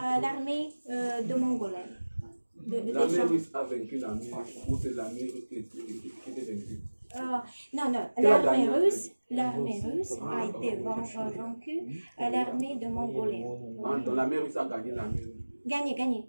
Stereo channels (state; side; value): inverted; both; correlation -1.00